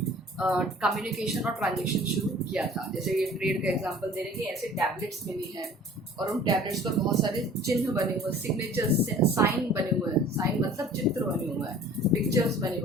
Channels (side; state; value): both; normal; correlation 0.48